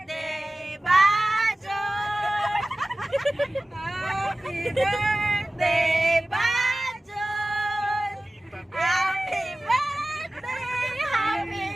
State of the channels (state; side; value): normal; both; correlation 0.97